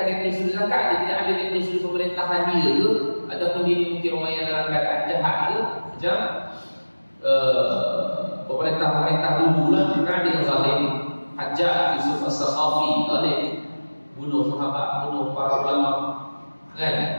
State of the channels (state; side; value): inverted; both; correlation -1.00